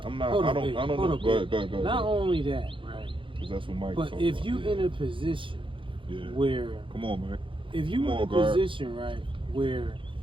Hold I up, don't hold know. up, Go ahead. Not only that, right? Because that's what Mike. But if you in a position where, come on, man. if you in a position, right, where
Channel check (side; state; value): left; late; 0.25 ms